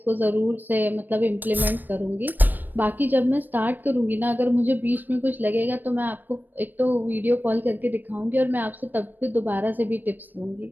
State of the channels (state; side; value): late; left; 0.090 ms